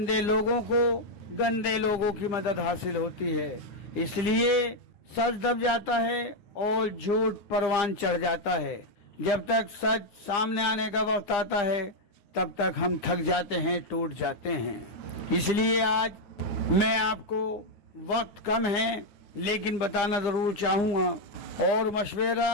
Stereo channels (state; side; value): late; right; 9.8 ms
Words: लोगों की मदद हासिल होती है, इसलिए सच दब जाता है और झूठ परवान चढ़ जाता है। जब तक सच सामने आने का वक्त आता है तब तक हम थक जाते हैं, टूट जाते हैं। इसलिए आज मैं आपको, वक्त कम है लेकिन बताना जरूर चाहूँगा और